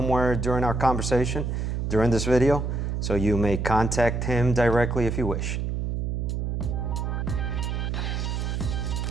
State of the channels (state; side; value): noise; right; hum, 1 dB below the sound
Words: during our conversation during this video, so you may contact him directly if you wish.